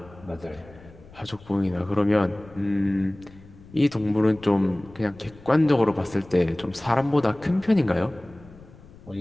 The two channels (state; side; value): noise; left; rumble, 22 dB below the sound